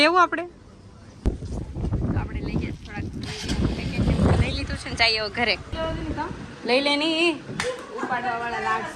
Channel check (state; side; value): identical; both; correlation 1.00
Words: આપણે લઈ ગયા થોડાક પેકેટ લઈ લીધું છે ને જઈએ ઘરે. લઈ લે નહીં ઉપાડવા વાળા